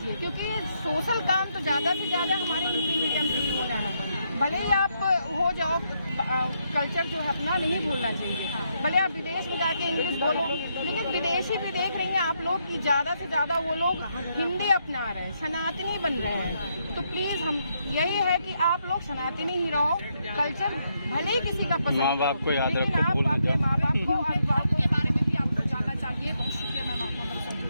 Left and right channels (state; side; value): inverted; both; correlation -0.78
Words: क्योंकि सोशल काम तो ज्यादा से ज्यादा हमारे हिंदी मीडियम से ही होना है। भले ही आप हो जाओ, कल्चर जो है अपना नहीं भूलना चाहिए। भले आप विदेश में जाके इंग्लिश बोलो, लेकिन विदेशी भी देख रहे हैं आप लोग कि ज्यादा से ज्यादा वो लोग हिंदी अपना रहे हैं, सनातनी बन रहे हैं। तो प्लीज हम यही है कि आप लोग सनातनी ही रहो, कल्चर भले ही किसी का पसंद, माँ बाप को याद लेकिन रखो, आप भूल मत अपने जाओ। माँ बाप को और अभिभावकों के बारे में भी आपको जानना चाहिए। बहुत शुक्रिया मैम आपका।